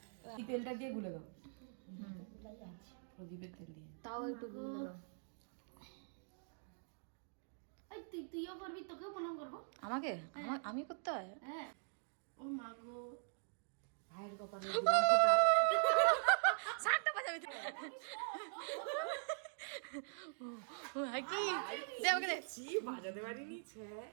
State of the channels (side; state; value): left; silent; digital silence